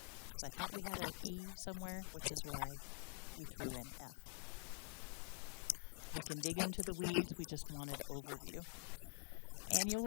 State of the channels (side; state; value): right; quieter; 38.5 dB